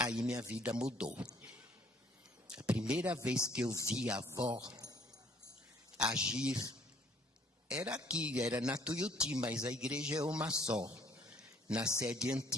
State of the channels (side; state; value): both; normal; correlation 0.61